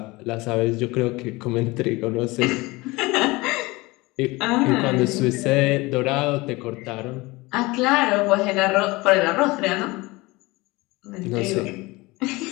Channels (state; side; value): quieter; right; 22.5 dB